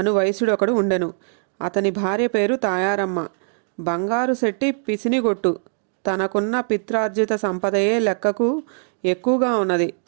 వైశ్యుడొకడు ఉండెను. అతని భార్య పేరు తాయారమ్మ. బంగారు శెట్టి పిసినిగొట్టు. తనకున్న పిత్రార్జిత సంపదయే లెక్కకు ఎక్కువగా ఉన్నది.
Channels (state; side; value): silent; left; 63 dB below the other